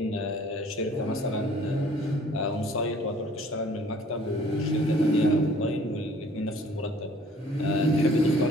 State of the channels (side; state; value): both; normal; correlation 0.55